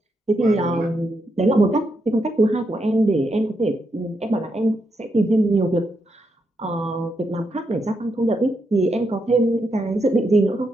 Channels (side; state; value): both; normal; correlation 0.82